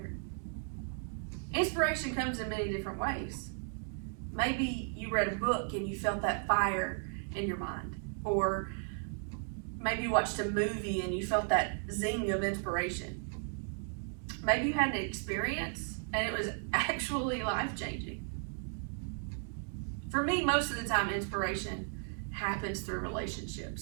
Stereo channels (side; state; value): left; silent; 54 dB below the other